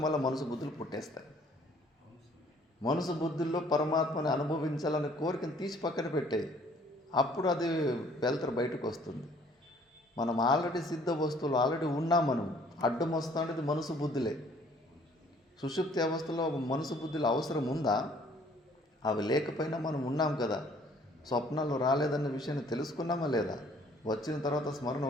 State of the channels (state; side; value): normal; both; correlation 0.58